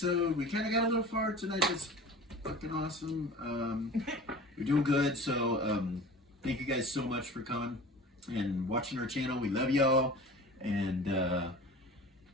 We kind of got a little far tonight. That's fucking awesome. We're doing good. So thank you guys so much for coming and watching our channel. We love y'all. And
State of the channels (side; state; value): both; normal; correlation 0.39